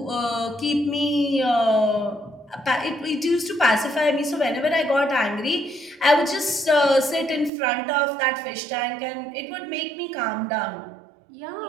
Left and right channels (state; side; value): drops out; left; at 7.5 s